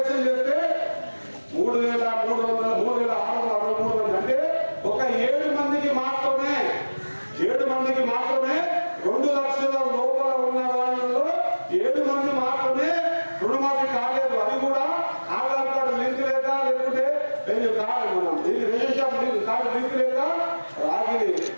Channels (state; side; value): inverted; both; correlation -1.00